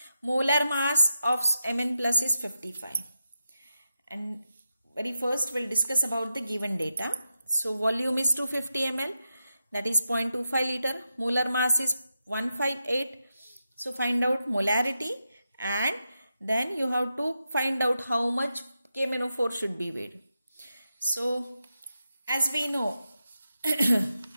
Molar mass of Mn plus is 55. And very first we'll discuss about the given data. So volume is 250 ml, that is 0.25 liter. Molar mass is 158. So find out molarity, and then you have to find out how much KMnO4 should be weighed. So as we know,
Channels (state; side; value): inverted; both; correlation -0.88